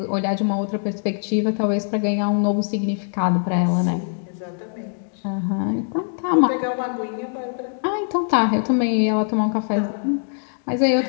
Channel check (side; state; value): right; silent; digital silence